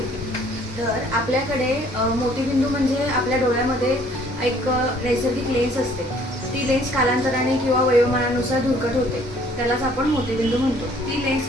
तर आपल्याकडे मोतीबिंदू म्हणजे आपल्या डोळ्यामध्ये एक नैसर्गिक लेन्स असते. ती लेन्स कालांतराने किंवा वयोमानानुसार धुरकट होते, त्यालाच आपण मोतीबिंदू म्हणतो. ती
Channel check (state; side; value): normal; both; correlation 0.59